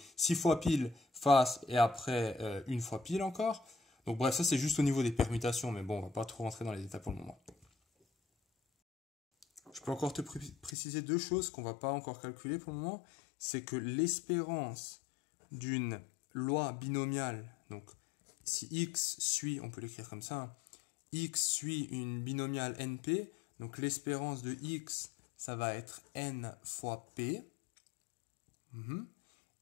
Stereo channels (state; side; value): drops out; right; at 10.8 s